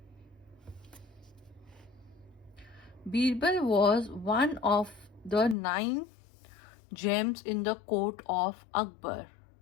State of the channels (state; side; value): drops out; right; at 5.6 s